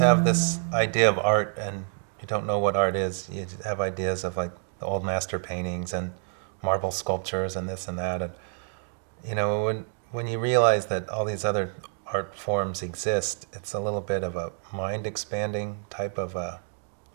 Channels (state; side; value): silent; left; 59 dB below the other